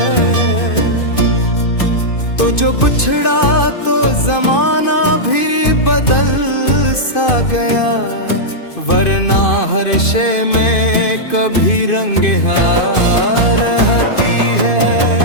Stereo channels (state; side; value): late; right; 2.5 ms